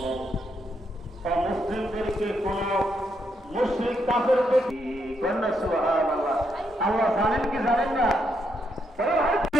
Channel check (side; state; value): both; normal; correlation 0.78